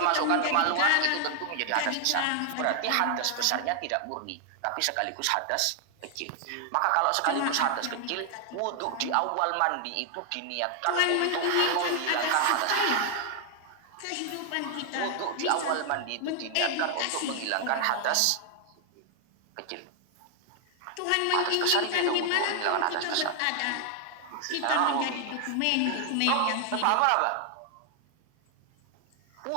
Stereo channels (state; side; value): different; both; correlation 0.00